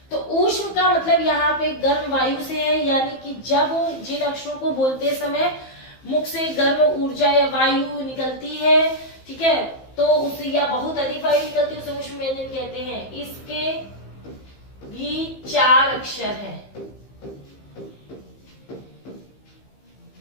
तो ऊष्म का मतलब यहाँ पे गर्म वायु से है, यानी कि जब जिन अक्षरों को बोलते समय मुख से गर्म ऊर्जा या वायु निकलती है, ठीक है, तो उससे या बहुत अधिक वायु निकलती है, उसे ऊष्म व्यंजन कहते हैं। इसके भी 4 अक्षर हैं,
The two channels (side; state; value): right; late; 15 ms